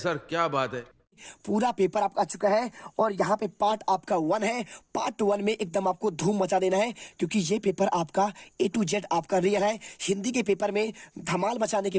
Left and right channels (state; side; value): identical; both; correlation 1.00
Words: क्या बात है। पूरा पेपर आपका आ चुका है और यहाँ पे पार्ट आपका 1 है। पार्ट 1 में एकदम आपको धूम मचा देना है क्योंकि ये पेपर आपका A to Z आपका रियल है। हिंदी के पेपर में धमाल मचाने के